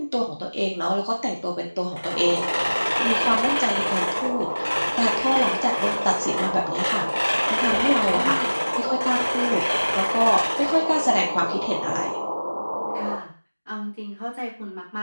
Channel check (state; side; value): inverted; both; correlation -1.00